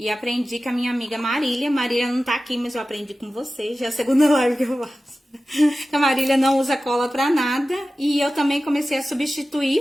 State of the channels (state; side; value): normal; both; correlation 0.95